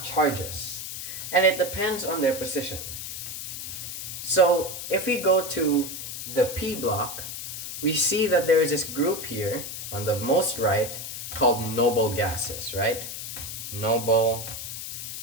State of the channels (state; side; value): noise; left; hiss, 7 dB below the sound